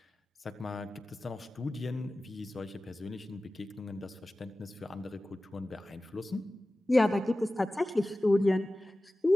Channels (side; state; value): both; normal; correlation 0.96